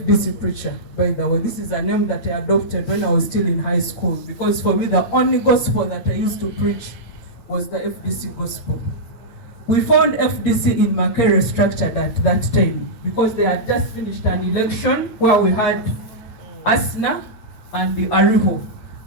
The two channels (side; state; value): right; late; 8.9 ms